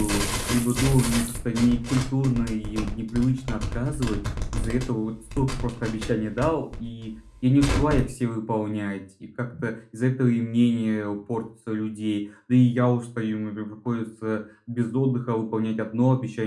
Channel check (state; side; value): identical; both; correlation 1.00